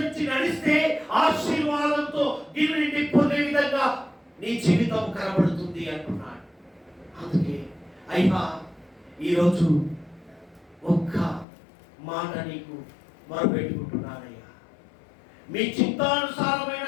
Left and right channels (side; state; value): right; drops out; at 11.5 s